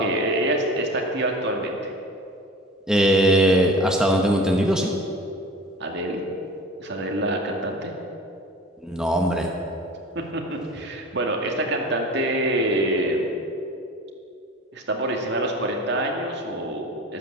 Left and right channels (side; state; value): both; normal; correlation 0.39